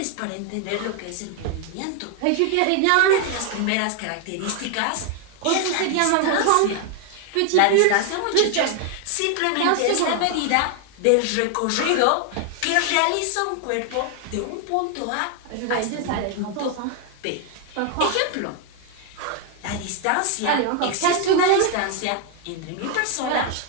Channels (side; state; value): both; different; correlation 0.00